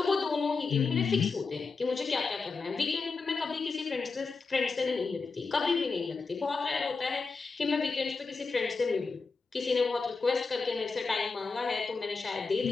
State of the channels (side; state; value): right; quieter; 4.4 dB